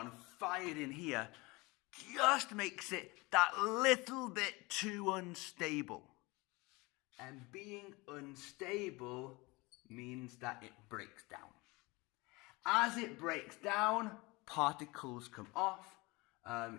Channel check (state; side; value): quieter; right; 24.2 dB